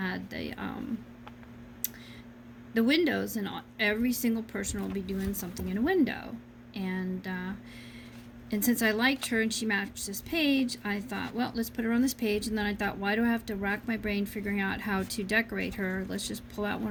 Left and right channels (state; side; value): identical; both; correlation 1.00